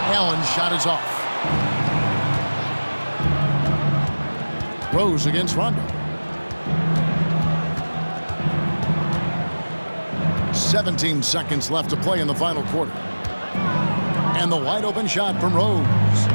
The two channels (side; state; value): both; inverted; correlation -1.00